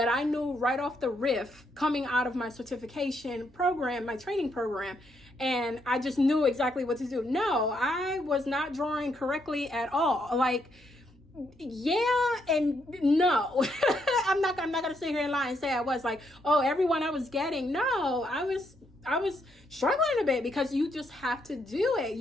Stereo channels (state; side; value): normal; both; correlation 0.76